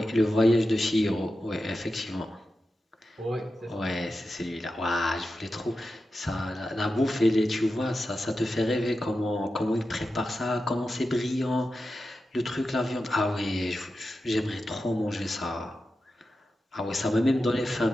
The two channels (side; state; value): both; normal; correlation 0.91